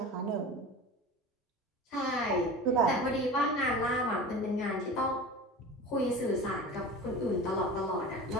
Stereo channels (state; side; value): normal; both; correlation 0.34